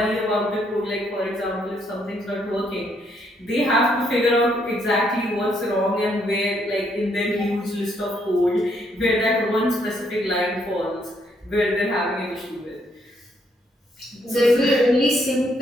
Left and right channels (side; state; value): both; normal; correlation 0.72